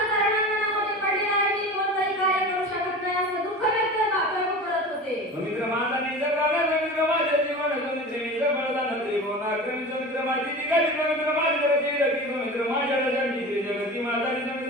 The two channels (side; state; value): both; normal; correlation 0.33